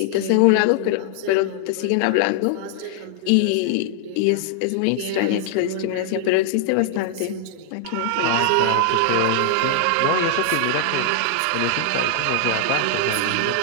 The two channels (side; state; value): both; different; correlation -0.01